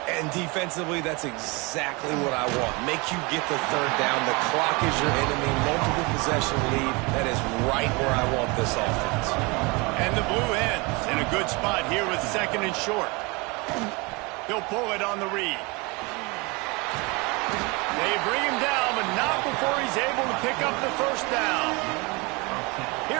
And defensively, that's exactly what I want. Make you get the 3rd down. The clock is your enemy. Multiple possession lead. That is right where I want this offense. And the Blue Hens in a good spot here with 2nd and short. He'll pull it on the read. They bring him down, but not before he's able to pick up the first down.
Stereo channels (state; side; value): quieter; left; 27.2 dB